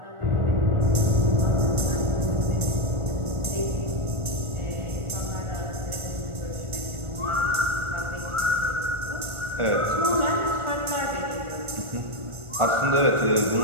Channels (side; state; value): left; late; 1.4 ms